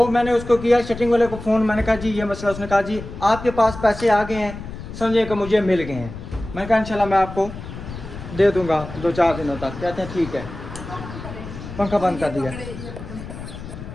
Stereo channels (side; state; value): left; noise; rumble, 11 dB below the sound